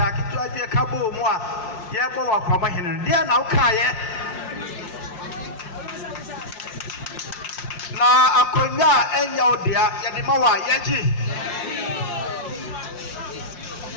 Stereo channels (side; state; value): right; late; 5.7 ms